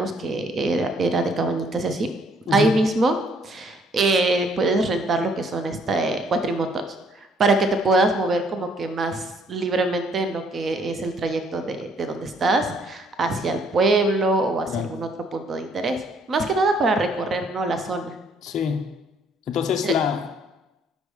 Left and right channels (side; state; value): both; normal; correlation 0.65